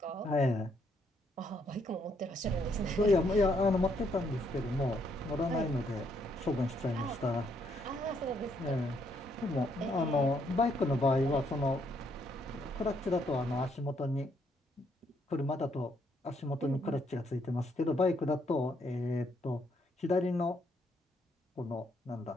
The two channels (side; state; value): both; normal; correlation 0.72